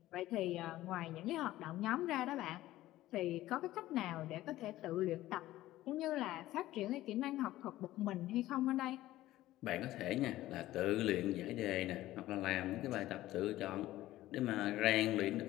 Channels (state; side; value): quieter; right; 15.5 dB